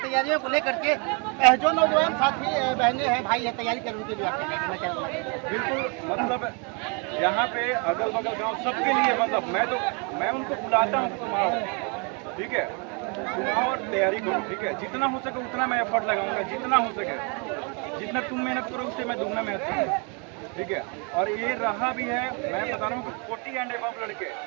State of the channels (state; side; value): quieter; left; 34.5 dB